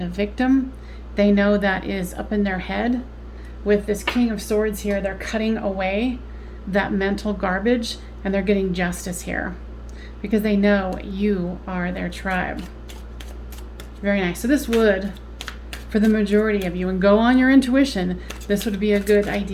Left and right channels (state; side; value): identical; both; correlation 1.00